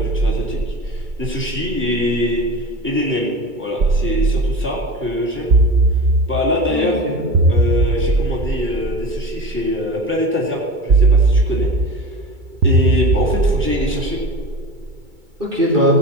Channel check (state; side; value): late; left; 2.2 ms